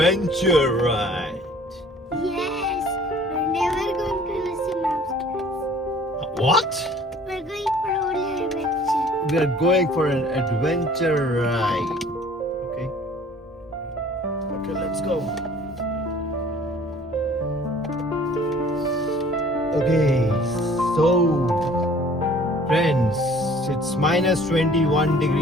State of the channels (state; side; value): normal; both; correlation 0.52